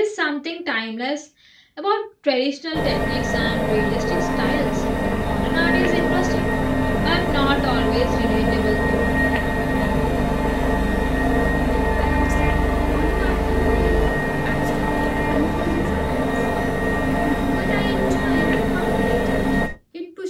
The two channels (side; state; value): both; identical; correlation 1.00